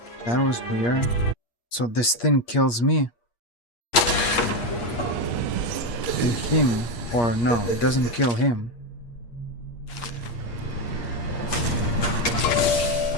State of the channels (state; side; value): late; right; 8.5 ms